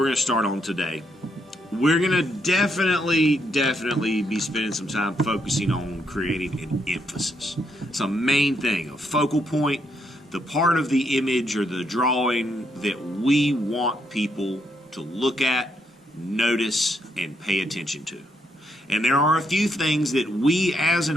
going to start on today, we're going to definitely be spending some time focusing on creating an emphasis. It's a main thing, a focal point, the part of the image or the drawing that we want people to look at, notice, and pay attention to. And there are a few things that we as an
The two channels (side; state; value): both; normal; correlation 0.76